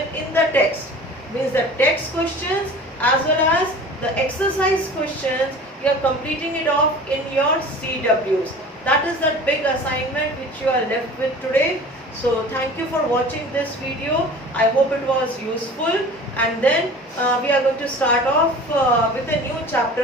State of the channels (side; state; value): both; normal; correlation 0.41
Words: in the text. Means the text questions as well as the exercise questions, you are completing it off in your CWs. That is the big assignment which you are left with today. So thank you for watching this video. I hope it was useful, and then we are going to start off with a new